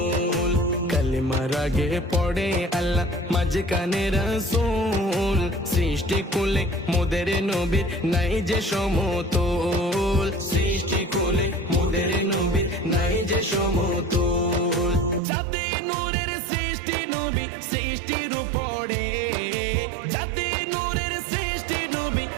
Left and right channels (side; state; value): left; drops out; at 15.2 s